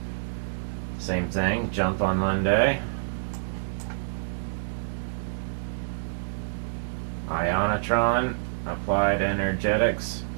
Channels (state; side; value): silent; left; digital silence